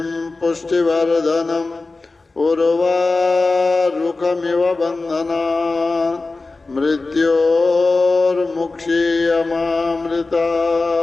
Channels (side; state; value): right; quieter; 3.5 dB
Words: पुष्टिवर्धनम् उर्वारुकमिव बन्धनान्